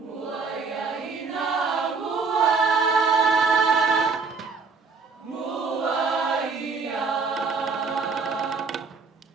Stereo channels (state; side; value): quieter; left; 4.7 dB